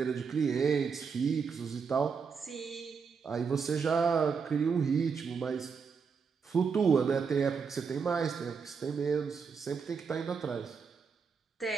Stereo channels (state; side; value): quieter; left; 5.8 dB